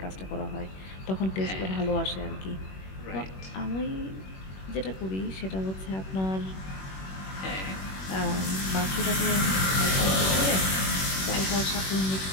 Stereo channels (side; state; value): right; late; 21 ms